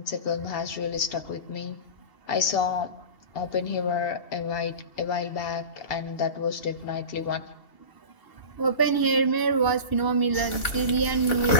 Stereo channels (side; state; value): right; late; 2.7 ms